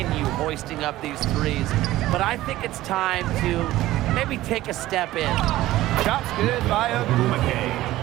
hoisting up these threes. But I think it's time to maybe take a step in. Shot's good by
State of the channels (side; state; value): left; quieter; 15.9 dB